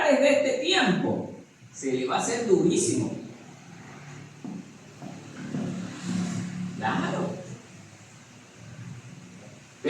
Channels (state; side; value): identical; both; correlation 1.00